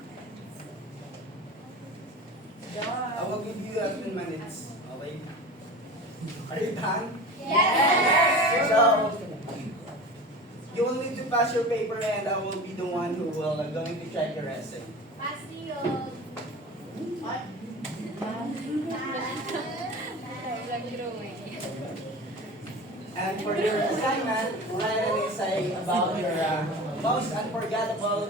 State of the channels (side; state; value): both; normal; correlation 0.34